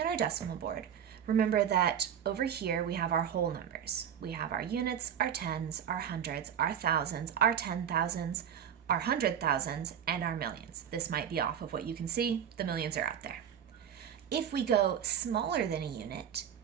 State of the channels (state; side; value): quieter; left; 8.8 dB